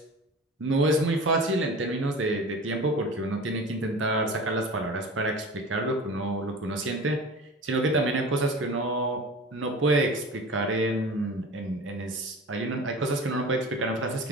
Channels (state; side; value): normal; both; correlation 0.36